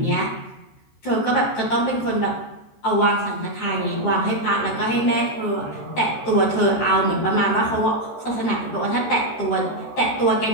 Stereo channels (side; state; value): right; late; 13 ms